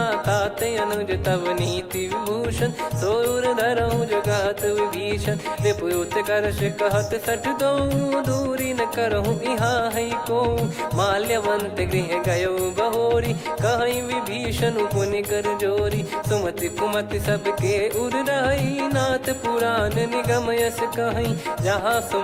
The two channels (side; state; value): both; identical; correlation 1.00